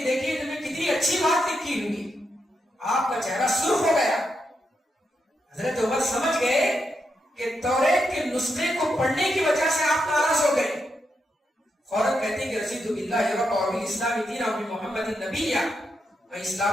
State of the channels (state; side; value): normal; both; correlation 0.83